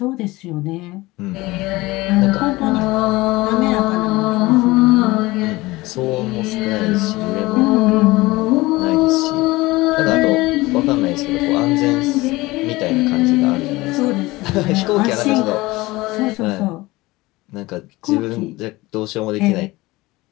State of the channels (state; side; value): quieter; right; 20.5 dB